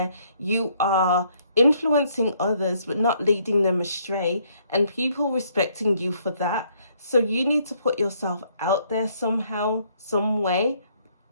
you are influencing others but not leading them astray, and people respecting you for that. So you need to put yourself out there somehow, some way,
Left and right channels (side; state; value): both; inverted; correlation -0.67